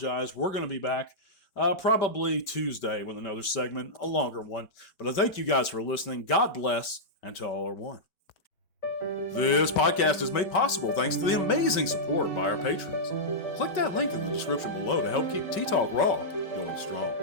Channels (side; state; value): right; late; 5.3 ms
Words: We're going to be back probably Tuesday with another segment, a longer one. But I thank you guys for listening. God bless, and to all are one. This podcast is made possible thanks to the amazing support by our patrons. Click that link in the description below to help keep T-Talk Raw going strong.